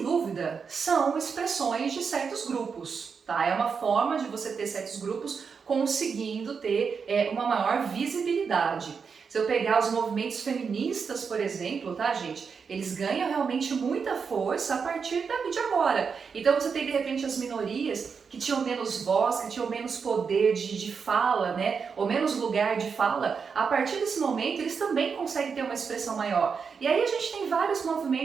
dúvida, são expressões de certos grupos, tá? É uma forma de você ter certos grupos conseguindo ter uma maior visibilidade. Se eu pegar os movimentos feministas, por exemplo, tá, gente? Eles ganham realmente muita força a partir de agora. Então você tem, de repente, as minorias que tinham menos voz, que tinham menos poder de fala, né? Ou menos lugar de fala. A partir desse momento, eles também conseguem ter uma expressão maior. E aí a gente tem vários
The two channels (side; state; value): left; quieter; 5.8 dB